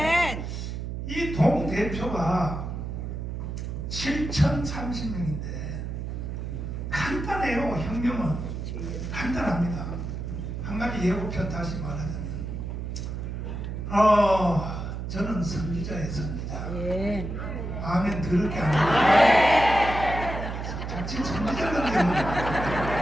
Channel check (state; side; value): noise; right; hum, 5 dB below the sound